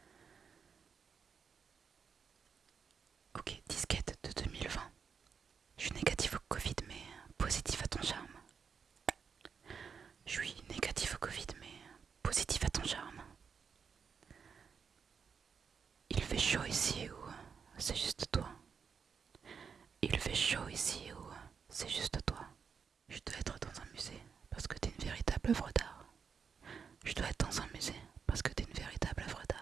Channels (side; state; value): left; quieter; 6.3 dB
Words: Ok, disquette de 2020. Je suis négatif au Covid mais positif à ton charme. Je suis négatif au Covid mais positif à ton charme. Il fait chaud ici ou c'est juste toi? Il fait chaud ici ou c'est juste toi? Je dois être dans un musée parce que t'es une véritable œuvre d'art. Je dois être dans un musée parce que t'es une véritable œuvre